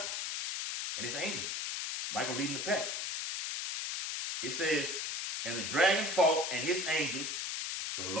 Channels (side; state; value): left; noise; hiss, 2 dB below the sound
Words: and his angels. Michael leading the pack. It says, and the dragon fought and his angels. So the